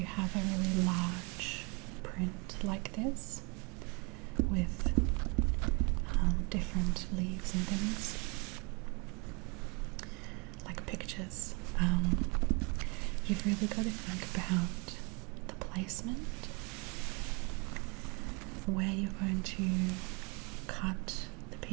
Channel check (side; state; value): left; quieter; 31.2 dB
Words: have a really large print like this with different leaves and things, like pictures. You've really got to think about the placement, where you're going to cut the